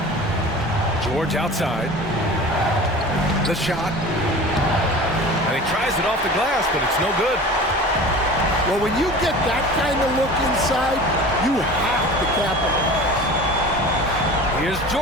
George outside. The shot. And he tries it off the glass, but it's no good. Well, when you get that kind of look inside, you have to capitalize. Here's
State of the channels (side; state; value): both; normal; correlation 0.38